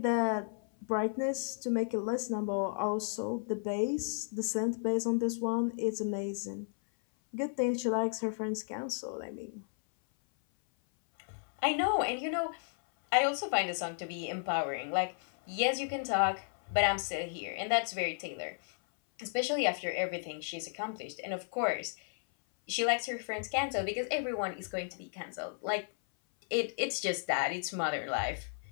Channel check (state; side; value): silent; right; 55 dB below the other